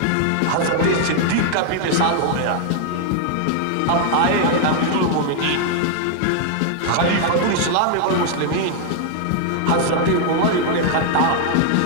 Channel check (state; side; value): different; both; correlation 0.00